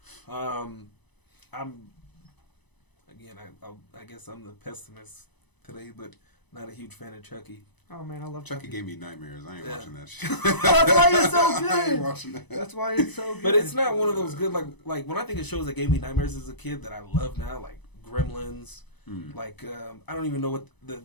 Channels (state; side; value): late; right; 1.0 ms